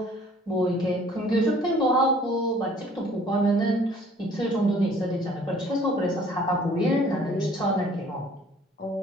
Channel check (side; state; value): both; normal; correlation 0.55